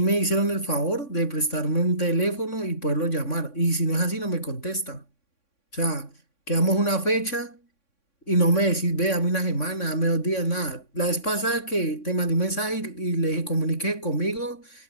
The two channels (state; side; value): late; right; 3.6 ms